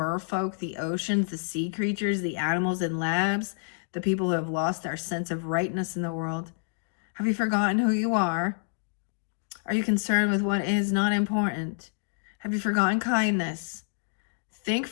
the oceans, the sea creatures, the animals in labs, the people who have lost their sense of rightness in the world. Have you forgotten who you are? Are you concerned with what is not important? Have you forgotten kindness? Think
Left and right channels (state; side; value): silent; right; digital silence